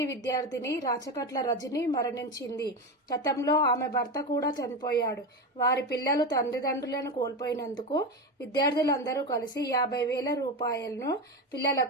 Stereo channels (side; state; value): both; normal; correlation 0.19